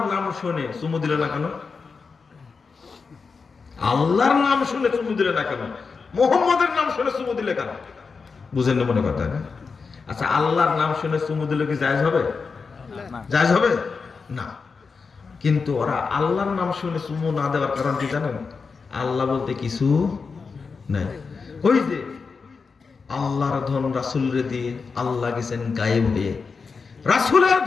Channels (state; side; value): quieter; right; 5.0 dB